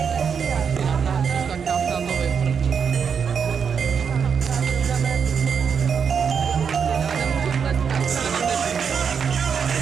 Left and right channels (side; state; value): left; quieter; 6.7 dB